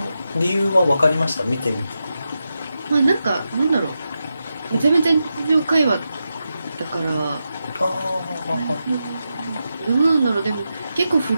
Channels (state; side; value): inverted; both; correlation -0.88